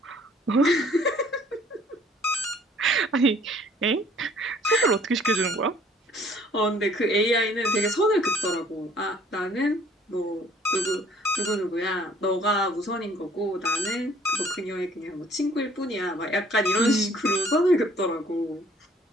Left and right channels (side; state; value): both; normal; correlation 0.58